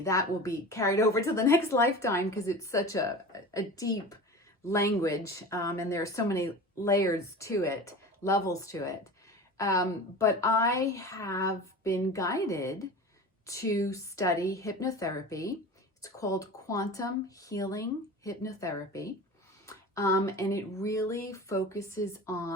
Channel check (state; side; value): normal; both; correlation 0.34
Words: that will be carried over to the next lifetime because it's such a deep language, and there are so many layers to it, levels to it. But I have been guided to study hypnotherapy. It's called quantum healing hypnotherapy. And it really focuses